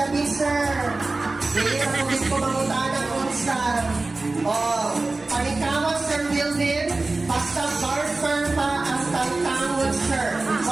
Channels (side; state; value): left; quieter; 3.3 dB